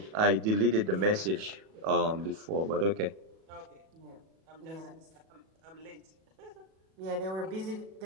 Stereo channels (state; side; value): late; left; 37 ms